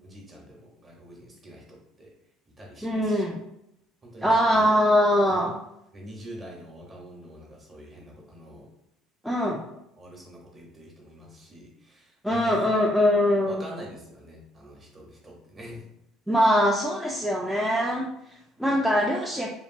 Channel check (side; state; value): both; normal; correlation 0.75